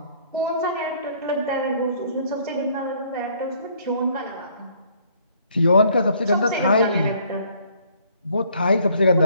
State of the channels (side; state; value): both; inverted; correlation -0.62